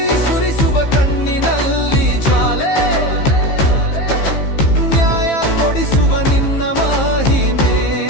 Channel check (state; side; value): late; right; 15 ms